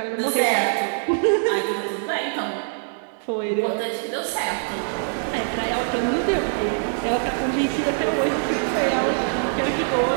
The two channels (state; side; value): silent; left; digital silence